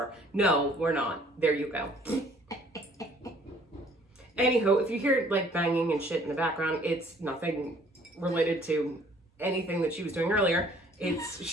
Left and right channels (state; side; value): normal; both; correlation 0.58